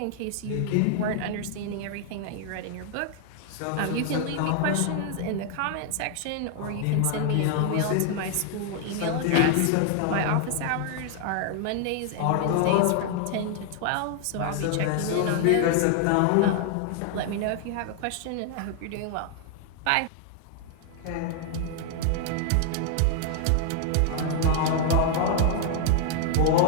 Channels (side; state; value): both; different; correlation 0.00